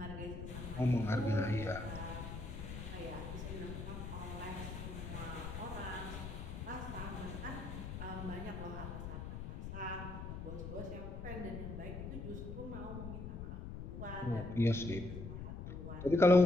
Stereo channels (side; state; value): left; noise; rumble, 7 dB below the sound